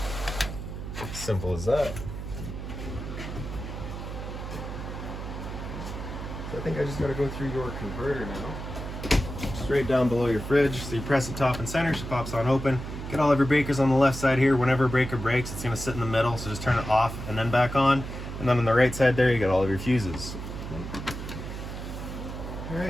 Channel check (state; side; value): noise; right; hum, 8 dB below the sound